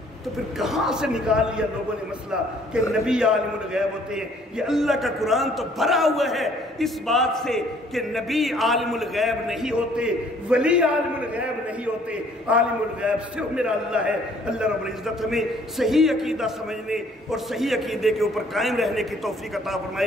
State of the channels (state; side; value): normal; both; correlation 0.60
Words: تو پھر کہاں سے نکال لیا لوگوں نے مسئلہ کہ نبی عالم الغیب ہوتے ہیں؟ یہ اللہ کا قرآن تو بھرا ہوا ہے اس بات سے کہ نبی عالم الغیب نہیں ہوتے، ولی عالم الغیب نہیں ہوتے. عالم الغیب صرف میرا اللہ ہے. اللہ رب العزت ہمیں صحیح عقیدہ سمجھنے اور صحیح عقیدے کے اوپر قائم رہنے کی توفیق عطا